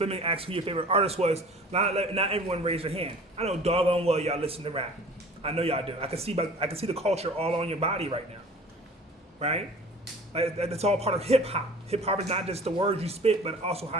asked who your favorite artist was, not everyone raised their hand. I know doggone well y'all listen to rap. I know y'all do. I can see the culture all on your body right now, right? Like that's all part of hip hop. Hip hop is not just the words you spit, but also how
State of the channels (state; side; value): normal; both; correlation 0.45